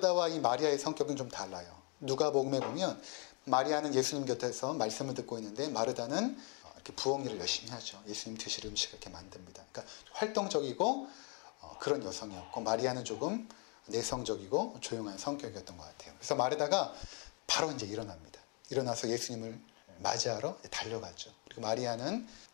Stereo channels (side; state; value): right; quieter; 34.7 dB